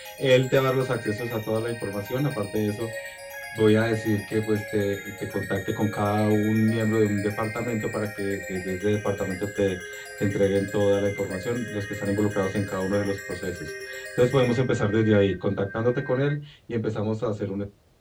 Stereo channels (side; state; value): both; identical; correlation 1.00